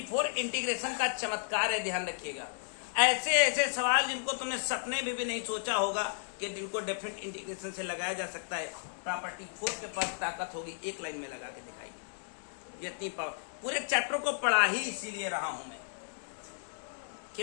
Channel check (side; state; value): right; silent; digital silence